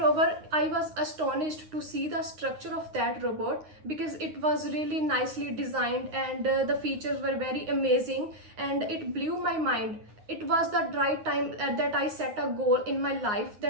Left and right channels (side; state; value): left; late; 9.6 ms